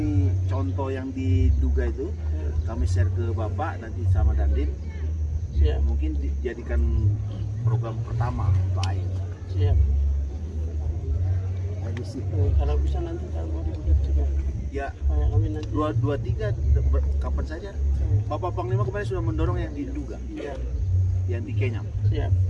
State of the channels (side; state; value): both; identical; correlation 1.00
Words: contoh yang diduga itu kami share ke Bapak nanti sama Dandim. Siap. Mungkin dijadikan program pertama untuk air. Siap. Air bersih. Kalau bisa nanti tak mau dibuat juga. Ya, Kami nanti 2-3 kapan saja. Bapak Panglima kemarin sudah mendorong yang diduga, yang di Kenyam. siap.